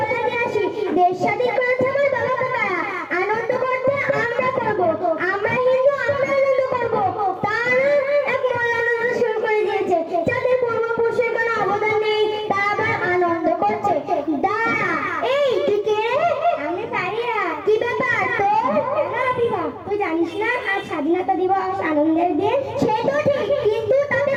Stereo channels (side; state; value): both; identical; correlation 1.00